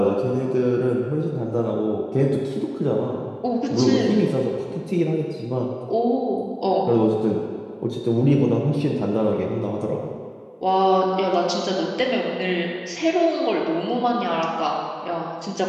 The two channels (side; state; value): both; identical; correlation 1.00